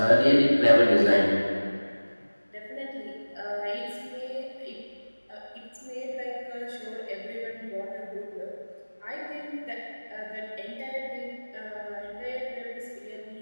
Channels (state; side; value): inverted; both; correlation -1.00